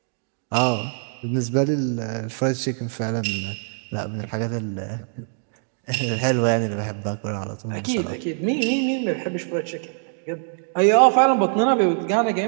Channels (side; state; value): left; silent; 57 dB below the other